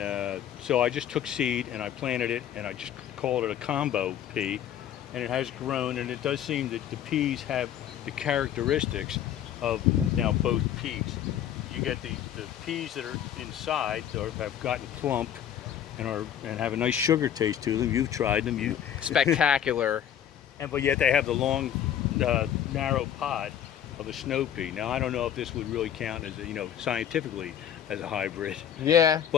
so I just took seed and I planted it, and I just called it a combo pea, and it has grown, and it does seem that the peas have the characteristics of now both peas. You get the peas that are inside or have gotten plump and have a nice sugar taste to them. You've tried them. Spectacular. But yet they have the long, narrow pod of a snow pea. Now I don't know if this would really count as scientifically as a hybrid. Yeah,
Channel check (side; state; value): right; quieter; 9.9 dB